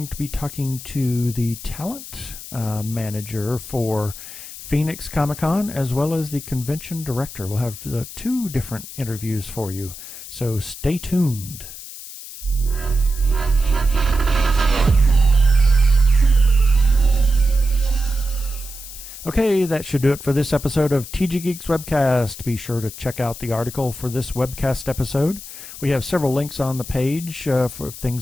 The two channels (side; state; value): left; noise; hiss, 13 dB below the sound